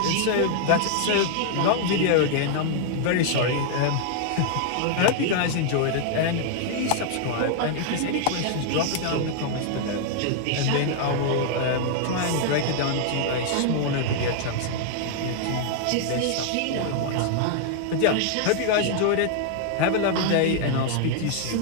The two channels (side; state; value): both; different; correlation 0.00